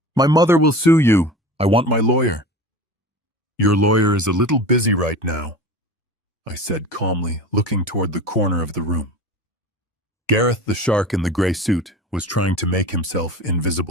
My mother will sue you. I want my lawyer. Your lawyer is a little busy right now, I said calmly, looking toward the corner of the room. Gareth, the shark in the gray suit, was trying to make himself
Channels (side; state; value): both; normal; correlation 0.35